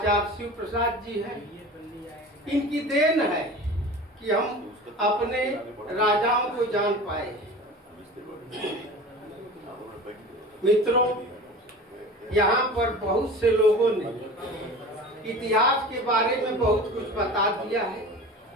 शिव प्रसाद जी हैं, इनकी देन है कि हम अपने राजाओं को जान पाए। मित्रों, यहाँ पर बहुत से लोगों ने इतिहास के बारे में बहुत कुछ बता दिया है,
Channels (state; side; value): normal; both; correlation 0.37